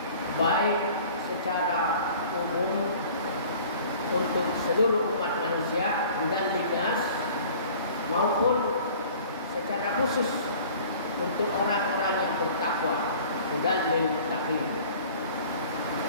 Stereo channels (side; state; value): both; inverted; correlation -0.47